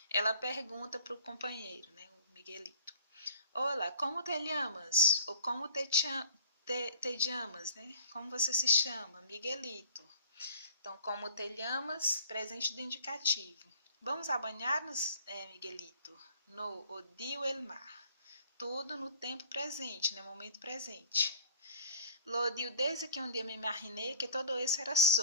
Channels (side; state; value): both; inverted; correlation -0.50